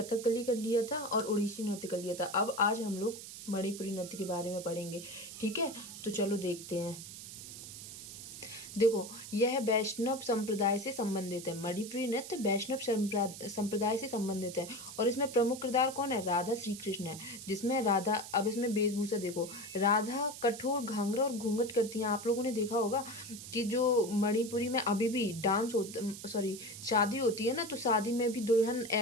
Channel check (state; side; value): noise; right; hiss, 12 dB below the sound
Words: कर लिया था और ओडिसी नृत्य कर लिया था। अब आज हम लोग मणिपुरी नृत्य के बारे में पढ़ेंगे। ठीक है, तो चलो देखते हैं। देखो, यह वैष्णव संप्रदाय से संबंधित है। मणिपुरी नृत्य वैष्णव संप्रदाय से संबंधित है और इसमें प्रमुख किरदार कौन है? राधा श्री कृष्ण है। जिसमें राधा, अब इसमें वेशभूषा देखो, राधा कठोर घाघरा और घूंघट करती हैं। आप लोगों ने देखा होगा कि जो मणिपुरी में अभी भी डांस होता, सॉरी, शादी होती है ना, तो शादी में भी दुल्हन